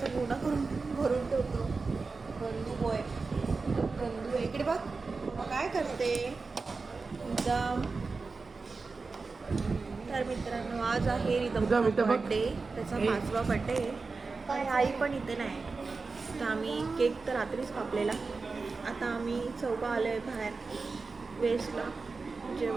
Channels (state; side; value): quieter; left; 4.2 dB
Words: गोडा करून भरून ठेवतो. गंदू बॉय, गंदू. इकडे बघ मग काय करते एकदम. तर मित्रांनो, आज आहे रिदमचा बर्थडे, त्याचा 5वा बर्थडे आणि आई पण इथे नाही. तर आम्ही केक तर रात्रीच कापलेला. आता आम्ही चौघं आलो आहे बाहेर वेस्टला